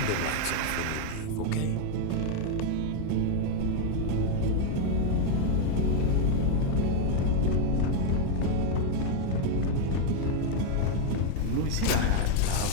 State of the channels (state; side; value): different; both; correlation 0.01